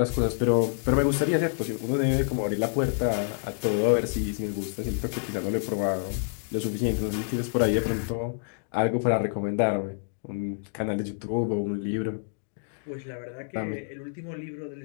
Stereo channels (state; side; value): silent; right; digital silence